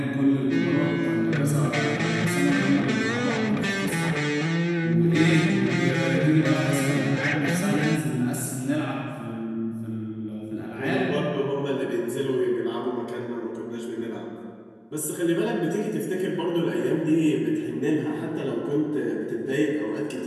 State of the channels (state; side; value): identical; both; correlation 1.00